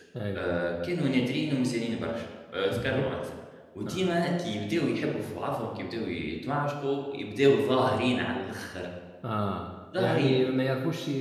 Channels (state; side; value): identical; both; correlation 1.00